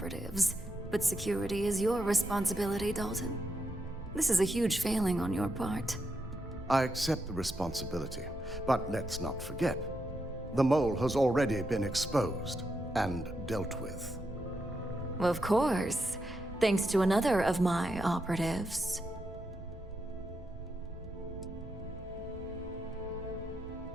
but security is your responsibility, Dalton. This is a huge failing on your part. I accept the responsibility, but let's not forget, the mole has already been exposed and dealt with. Of course, thanks to another of my operatives.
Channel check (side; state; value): both; normal; correlation 0.83